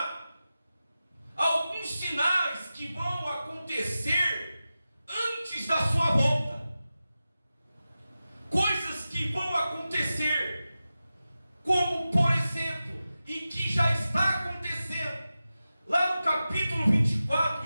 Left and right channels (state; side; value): inverted; both; correlation -0.94